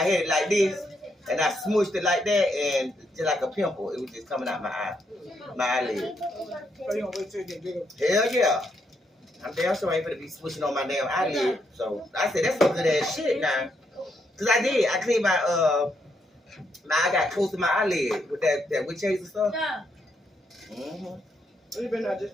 had it like this, and I smushed it like that, and just like a pimple, it was just coming out my eye, my eyelid. So you don't wait till you get bigger? Hell yeah. I'm damn sure I ain't gonna be switching on my damn eyelid. So I said, that's some good ass shit now. Cause I did. I cleaned my I got close to my eyelid with that witch hazel stuff. You been there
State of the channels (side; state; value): both; normal; correlation 0.77